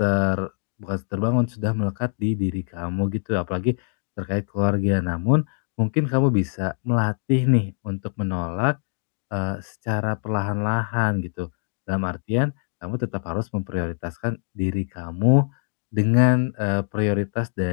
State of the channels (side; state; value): right; silent; digital silence